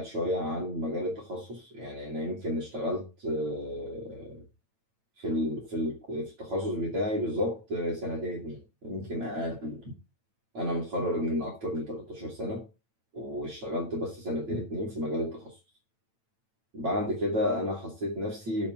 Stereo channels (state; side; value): late; left; 9.0 ms